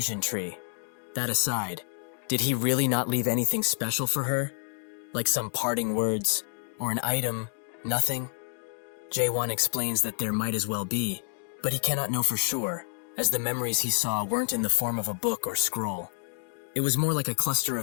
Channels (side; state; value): right; silent; 59 dB below the other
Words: tree. That aside, did he really not leave anything special for her? Like some parting words, or an item, nothing? Chaewon explains that there might as well be, but he cannot know for sure, as the memories he saw weren't in the form of a book or scroll. It was more like a cluster